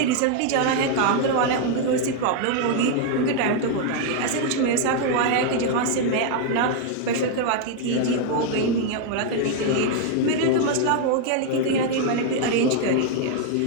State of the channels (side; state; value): both; different; correlation 0.00